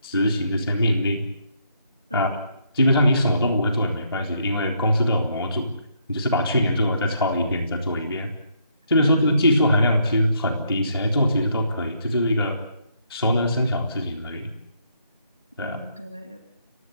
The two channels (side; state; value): both; inverted; correlation -0.72